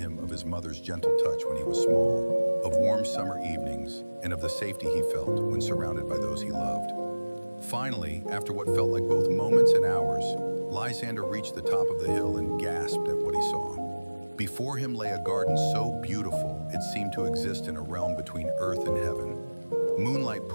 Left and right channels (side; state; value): both; inverted; correlation -1.00